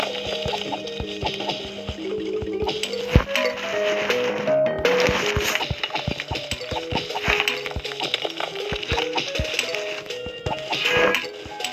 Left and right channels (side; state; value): both; identical; correlation 1.00